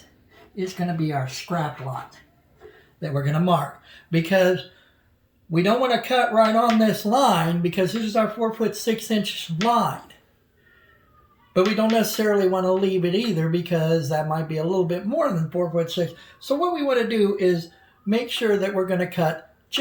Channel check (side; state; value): both; identical; correlation 1.00